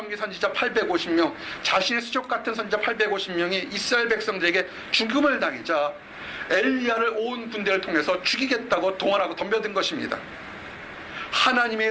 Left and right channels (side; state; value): both; identical; correlation 1.00